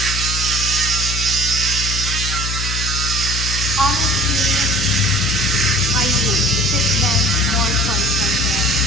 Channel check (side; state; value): left; noise; hum, 4 dB below the sound